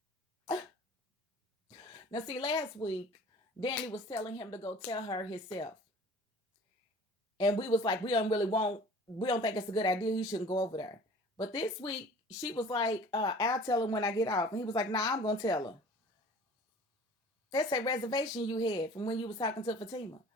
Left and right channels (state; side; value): normal; both; correlation 0.46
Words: Now, see, last week, Dani was telling him to go tell her himself. And we was like, we don't think it's a good idea. He shouldn't go over there. But this week, she was like, I'll tell him when I get off. And he was like, nah, I'm going to tell her. That's a reservation you had from when you was talking to Fatima.